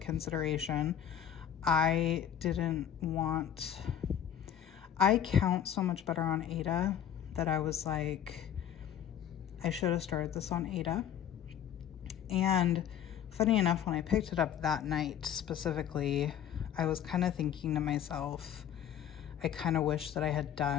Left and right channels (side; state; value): right; quieter; 9.7 dB